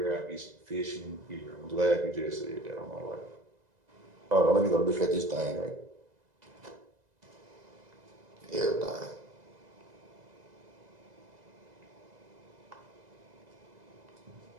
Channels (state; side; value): late; left; 2.0 ms